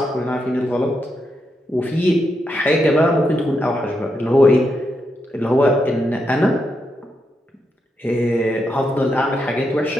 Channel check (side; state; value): both; normal; correlation 0.83